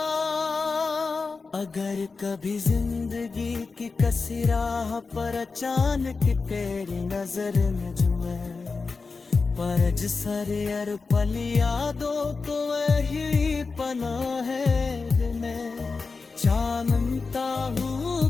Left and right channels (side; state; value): right; quieter; 4.4 dB